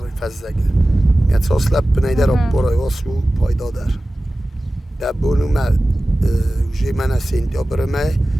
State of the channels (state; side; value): normal; both; correlation 0.96